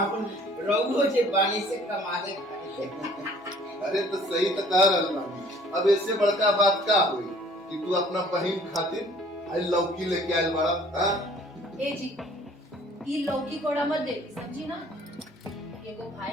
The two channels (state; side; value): normal; both; correlation 0.54